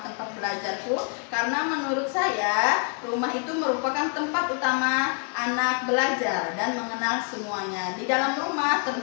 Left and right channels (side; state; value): right; quieter; 39.4 dB